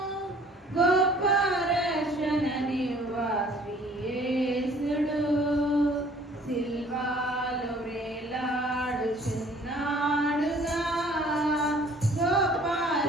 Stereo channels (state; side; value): normal; both; correlation 0.55